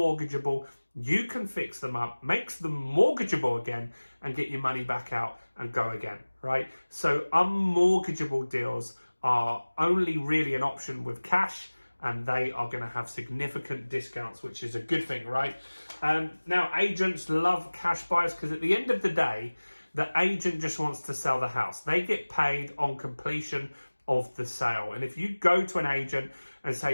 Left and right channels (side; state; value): both; inverted; correlation -1.00